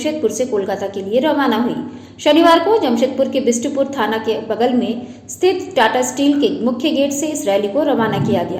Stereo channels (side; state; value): both; identical; correlation 1.00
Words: से कोलकाता के लिए रवाना हुई। शनिवार को जमशेदपुर के बिष्टुपुर थाना के बगल में स्थित टाटा स्टील के मुख्य गेट से इस रैली को रवाना किया